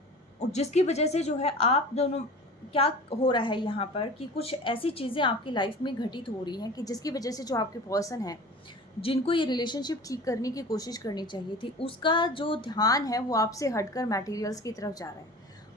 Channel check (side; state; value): both; normal; correlation 0.39